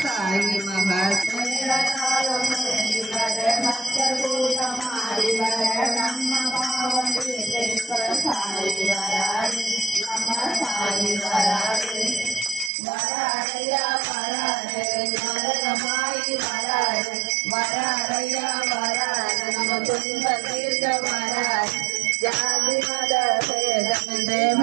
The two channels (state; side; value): drops out; left; at 12.7 s